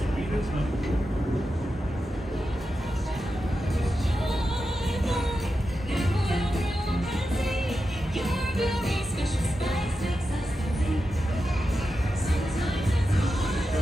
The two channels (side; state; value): both; normal; correlation 0.90